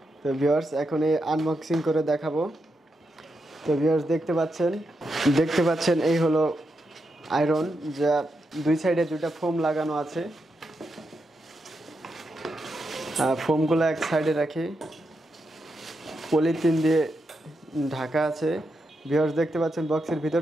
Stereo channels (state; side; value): normal; both; correlation 0.85